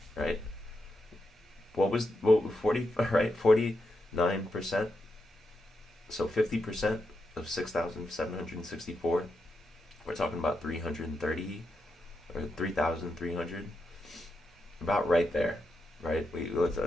right? What was 40, right? 49%. So 50% of 6,764. We're talking about 330 or 3,300. About right there, right?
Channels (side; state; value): both; normal; correlation 0.85